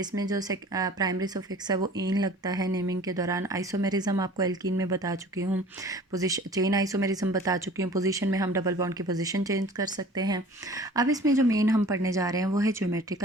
जो प्राइमरी सफिक्स है वो ईन लगता है नेमिंग के दौरान। आइसोमेरिज्म आपको एल्कीन में बता चुकी हूँ, पोजीशन चेन आइसोमेरिज्म बता चुकी हूँ। पोजीशन में हम डबल बॉन्ड की पोजीशन चेंज कर सकते हैं। अब इसमें जो मेन हम पढ़ने जा रहे हैं वो है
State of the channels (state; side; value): normal; both; correlation 0.46